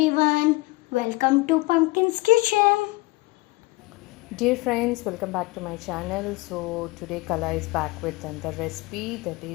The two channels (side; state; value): right; quieter; 21.7 dB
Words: welcome to Pumpkin's Kitchen. Dear friends, welcome back to my channel. So today Kala is back with another recipe, that